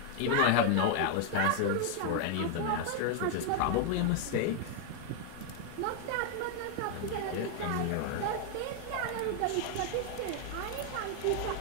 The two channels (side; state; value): both; different; correlation 0.00